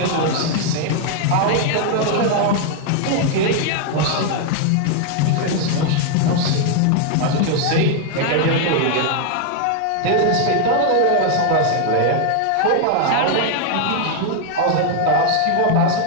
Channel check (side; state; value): both; different; correlation 0.00